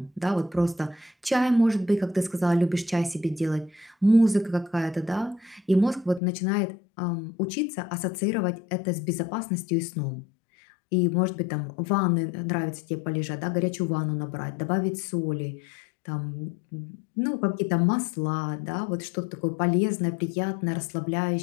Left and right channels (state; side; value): drops out; right; at 6.2 s